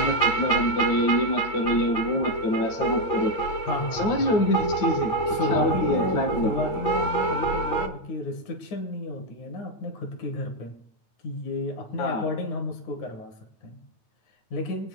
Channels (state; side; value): late; right; 9.1 ms